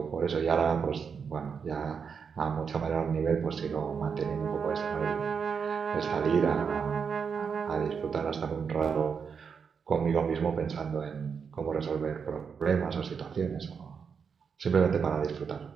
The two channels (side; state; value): left; quieter; 6.3 dB